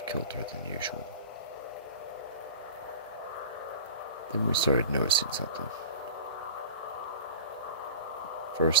kilter than usual. Then we started noticing something.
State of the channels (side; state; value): both; inverted; correlation -0.36